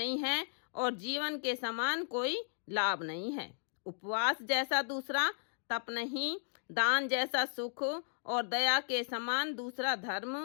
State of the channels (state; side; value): silent; right; digital silence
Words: है और जीवन के समान कोई लाभ नहीं है, उपवास जैसा दूसरा तप नहीं, दान जैसा सुख और दया के समान दूसरा